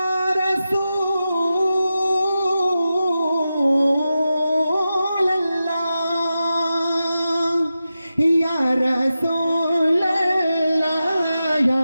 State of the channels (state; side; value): inverted; both; correlation -0.91